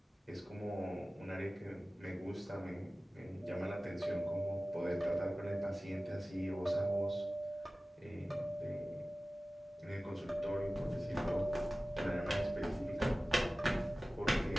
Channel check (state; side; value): normal; both; correlation 0.97